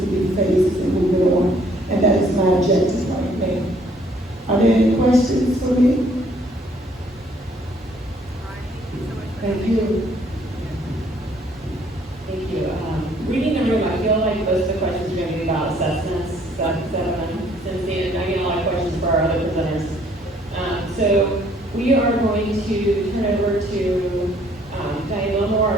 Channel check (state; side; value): normal; both; correlation 0.63